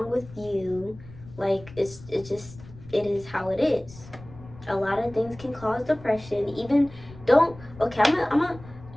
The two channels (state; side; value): noise; left; rumble, 19 dB below the sound